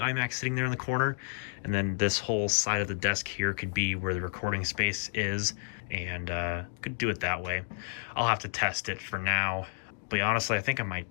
sitting there in the corner, and then this whole side of the desk here could be where the recording space is, and could do it that way. I'll have to test it for now, but honestly I think I might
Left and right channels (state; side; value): silent; right; digital silence